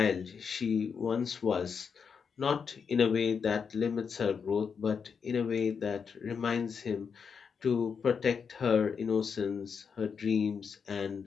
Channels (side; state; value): right; quieter; 6.2 dB